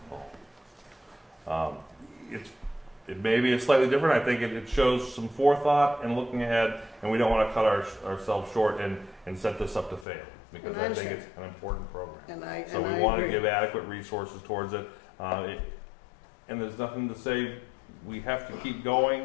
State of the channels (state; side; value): drops out; right; at 10.1 s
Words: It may be slightly different. I think it shows some forethought and looking ahead, and we don't want to cut ourselves short and set this up to fail, because I think it's an important program. So we want to give adequate resources towards it. And there's nothing to say we have to keep